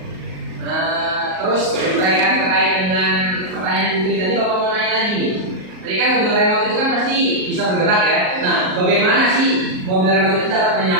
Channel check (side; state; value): left; late; 38 ms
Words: Terus berkaitan terkait dengan pertanyaan Putri tadi, Bapak mau nanya lagi nih. Tadi kan mobil remote itu kan pasti bisa bergerak ya? Nah, bagaimana sih mobil remote itu dapat